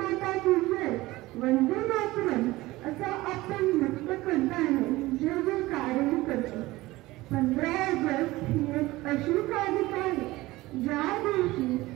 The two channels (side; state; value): left; quieter; 19.0 dB